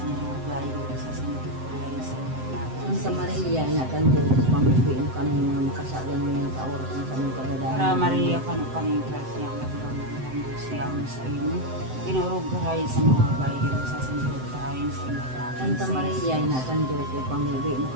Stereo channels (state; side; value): late; left; 7.8 ms